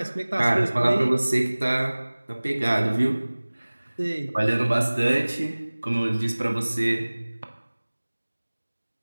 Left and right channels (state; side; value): inverted; both; correlation -1.00